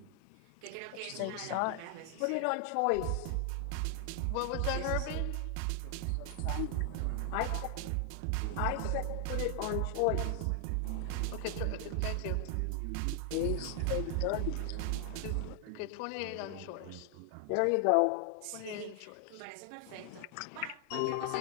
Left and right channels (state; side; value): different; both; correlation 0.00